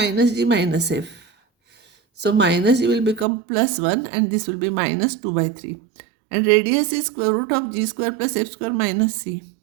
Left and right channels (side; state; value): left; drops out; at 3.2 s